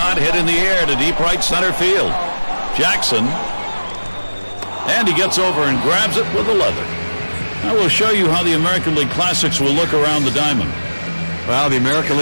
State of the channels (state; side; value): inverted; both; correlation -1.00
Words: hit in the air to deep right center field. Jackson. And he gets over and grabs it with the leather. I will show you how the American League Classics will look around the diamond. Well, the American